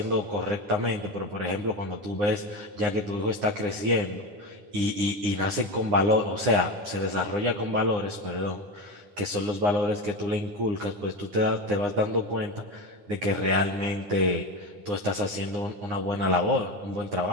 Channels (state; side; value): late; left; 9.8 ms